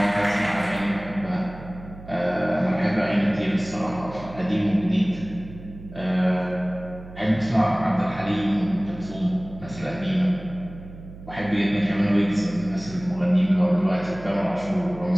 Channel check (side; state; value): right; noise; hum, 16 dB below the sound